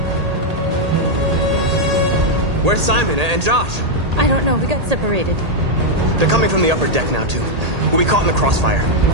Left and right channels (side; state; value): left; late; 1.8 ms